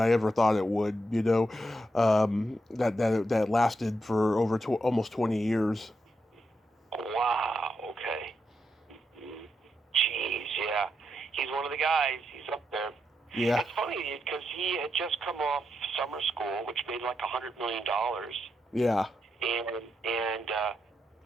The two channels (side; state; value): both; normal; correlation 0.83